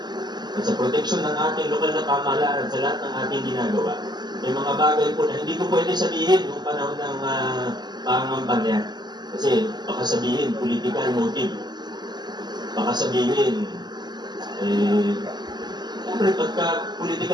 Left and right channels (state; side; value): late; left; 0.21 ms